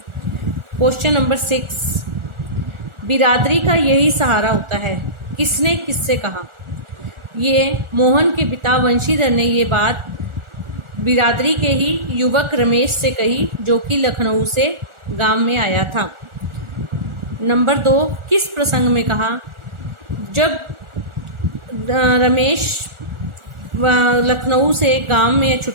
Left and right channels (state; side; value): late; left; 1.4 ms